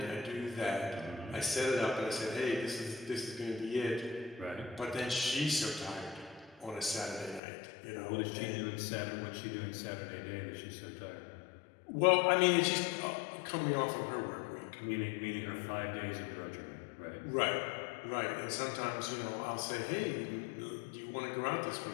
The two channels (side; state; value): right; drops out; at 7.4 s